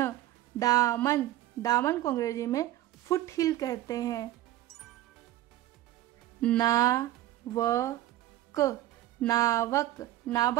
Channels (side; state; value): left; quieter; 14.3 dB